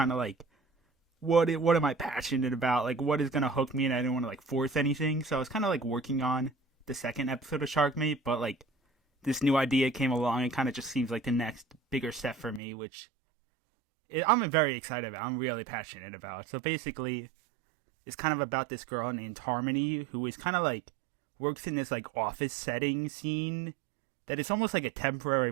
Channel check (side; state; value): left; drops out; at 12.6 s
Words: of like what am I passionate about? Like what is gonna hook me, and I didn't want to like force anything. So I was kind of like working on the second episode of Sharkmate, but like this new idea came along and kind of just seems like the next bigger step for me, which I'm very excited about. I'm really passionate about. So basically, it's kind of about this girl named Harmony who is kind of like works in this like office setting scene that is almost like a